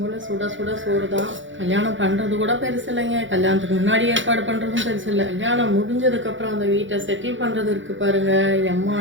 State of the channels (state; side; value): late; left; 0.56 ms